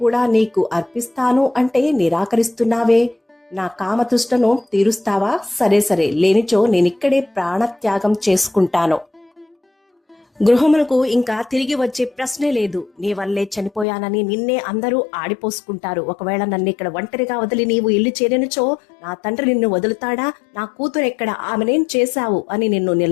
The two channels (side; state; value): right; drops out; at 13.9 s